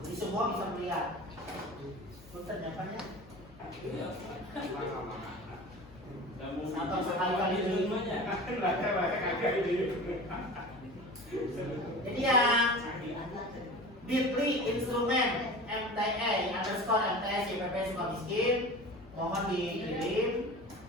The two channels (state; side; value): noise; left; hum, 22 dB below the sound